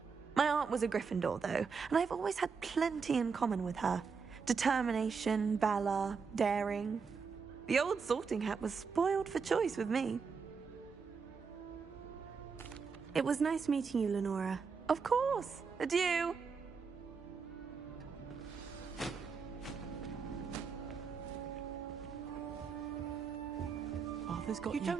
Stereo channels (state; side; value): quieter; left; 5.5 dB